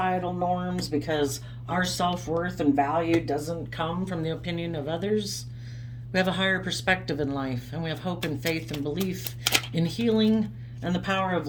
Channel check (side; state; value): both; identical; correlation 1.00